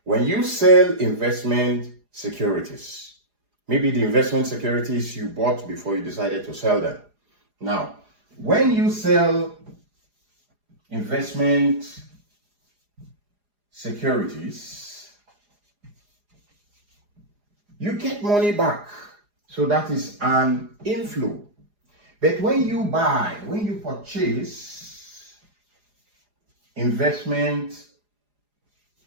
When you sell investment securities, maybe the investment securities you bought before you decided to sell them. Now, when you sell investment securities, you get money back. So that is an inflow. But when you purchase investment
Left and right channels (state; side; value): late; left; 4.9 ms